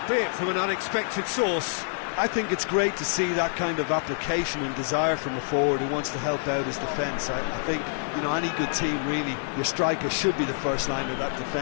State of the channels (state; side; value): silent; right; 60 dB below the other